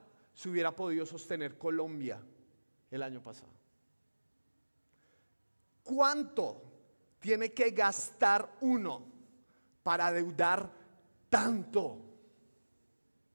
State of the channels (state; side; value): inverted; both; correlation -1.00